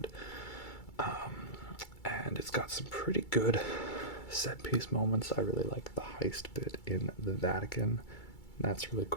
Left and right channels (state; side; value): late; right; 2.3 ms